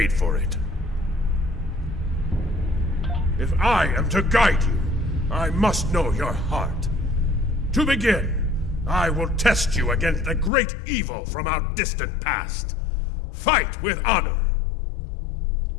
for it. If I am to guide you, I must know your heart. To begin, I will test you against the great evil from our distant past. Fight with honor.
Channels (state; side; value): drops out; right; at 10.5 s